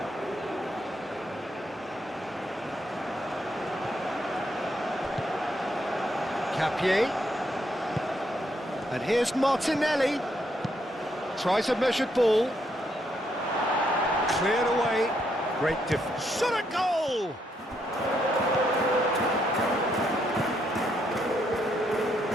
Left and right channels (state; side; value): normal; both; correlation 0.75